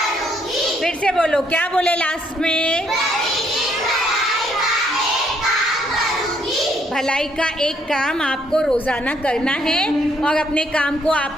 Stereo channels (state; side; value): normal; both; correlation 0.70